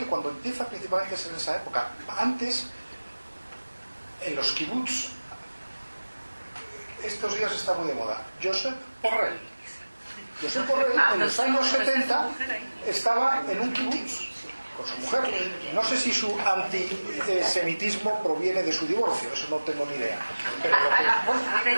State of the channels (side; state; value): both; inverted; correlation -1.00